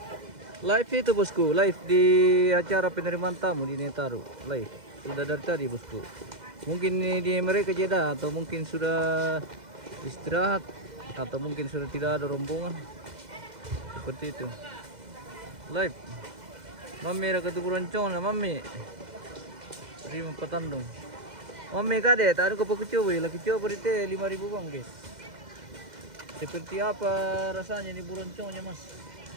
Live itu bosku, live di acara penerimaan tamu di Netaru. Live sudah dari tadi bosku. Mungkin di mereka jeda atau mungkin sudah istirahat atau mungkin sudah tidak ada rombongan seperti itu. Live Mami ada ketuburan cona Mami terima petandung Mami kade tak ada kopi coba lagi coba di teh 5.000 bang guys. Seperti apa rasanya ini buronconnya Mas?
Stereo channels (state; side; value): late; left; 2.0 ms